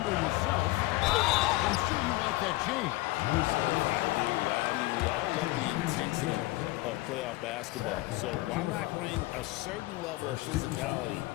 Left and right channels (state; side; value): quieter; right; 19.8 dB